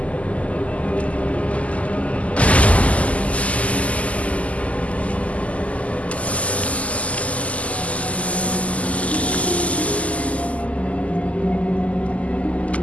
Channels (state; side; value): late; right; 0.068 ms